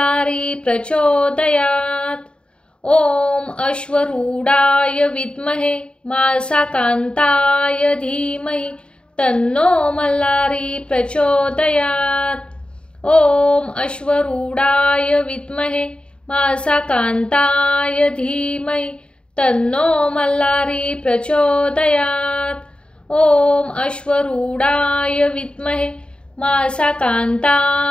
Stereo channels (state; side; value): late; right; 0.053 ms